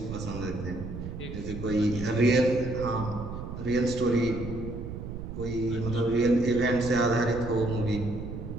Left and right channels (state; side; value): noise; right; rumble, 8 dB below the sound